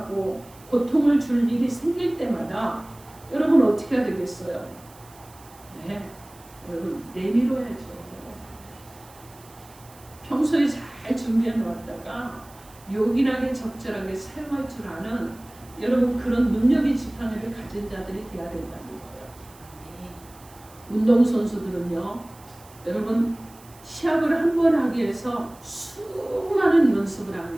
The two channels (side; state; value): right; noise; hiss, 24 dB below the sound